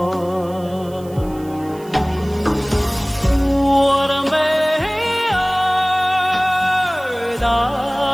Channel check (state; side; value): noise; right; hiss, 24 dB below the sound